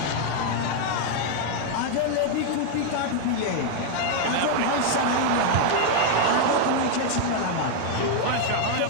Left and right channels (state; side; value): different; both; correlation 0.00